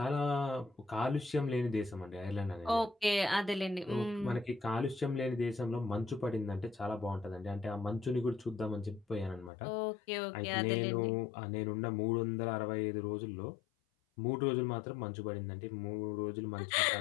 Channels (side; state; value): right; drops out; at 9.5 s